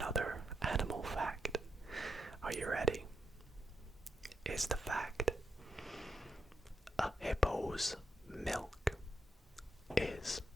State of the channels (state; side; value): normal; both; correlation 0.83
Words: animal fact. Are you ready? Is the fact: a hippo's milk is